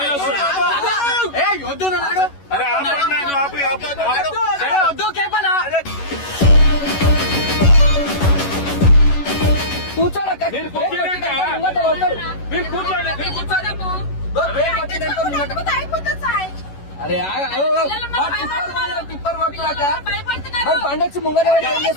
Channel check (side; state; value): right; late; 11 ms